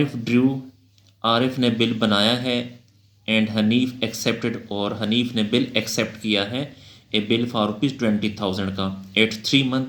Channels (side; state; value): both; identical; correlation 1.00